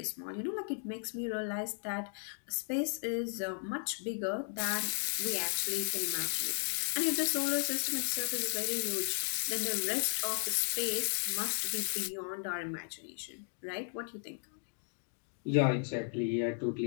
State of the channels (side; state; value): right; silent; 54 dB below the other